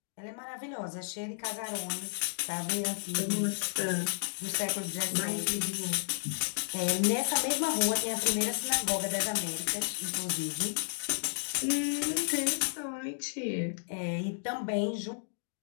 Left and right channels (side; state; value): right; silent; digital silence